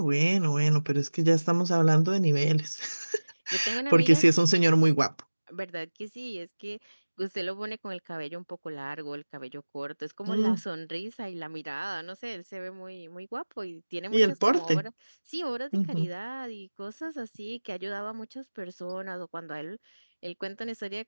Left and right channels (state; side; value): inverted; both; correlation -1.00